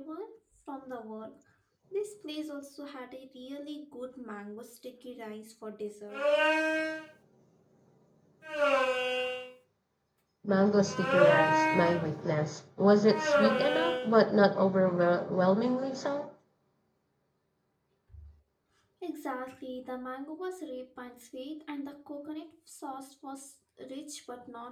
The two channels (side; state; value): both; identical; correlation 1.00